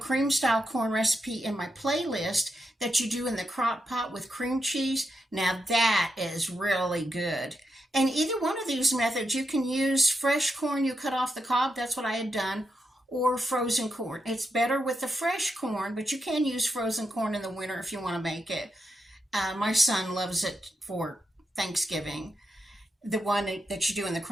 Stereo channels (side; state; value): both; normal; correlation 0.84